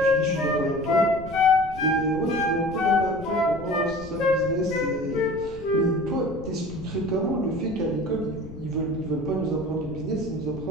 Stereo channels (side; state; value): left; noise; rumble, 15 dB below the sound